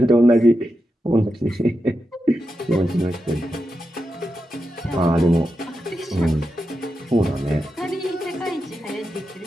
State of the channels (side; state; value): both; normal; correlation 0.88